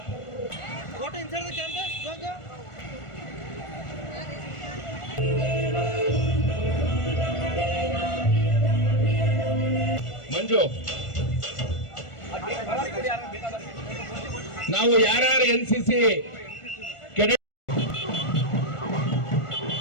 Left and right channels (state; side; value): late; right; 1.4 ms